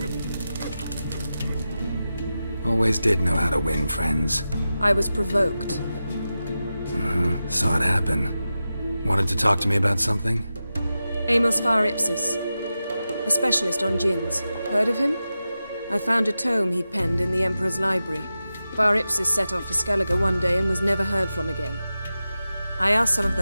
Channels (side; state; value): both; inverted; correlation -0.92